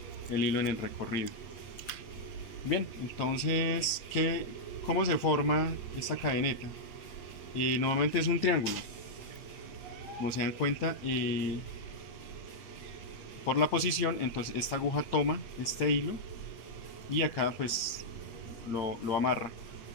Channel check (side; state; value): right; late; 8.9 ms